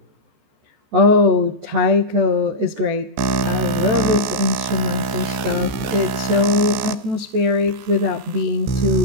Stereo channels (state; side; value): late; left; 15 ms